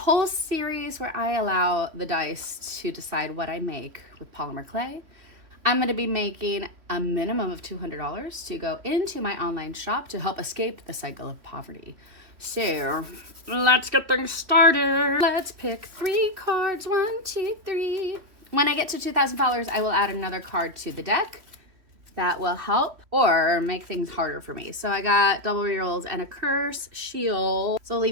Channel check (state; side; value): late; left; 3.1 ms